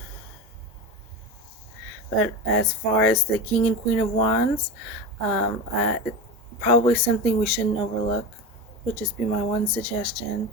But as far as the King and Queen of Wands, it's probably something we shouldn't overlook. Would just be my one suggestion.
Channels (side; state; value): both; normal; correlation 0.23